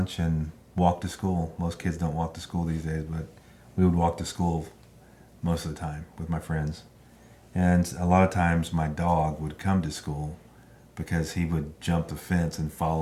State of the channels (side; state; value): both; identical; correlation 1.00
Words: and walk to school. Most kids don't walk to school these days, but we would walk to school most of the time with my friends. And a lot of times my dog would come to school because he would jump the fence and